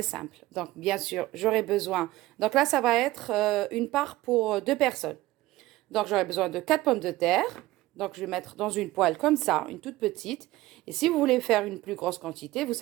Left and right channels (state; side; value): quieter; left; 17.6 dB